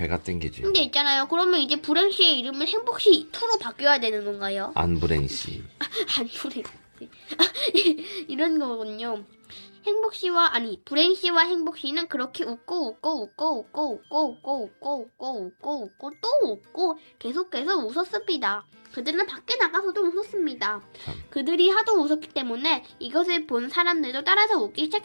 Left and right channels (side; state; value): both; inverted; correlation -1.00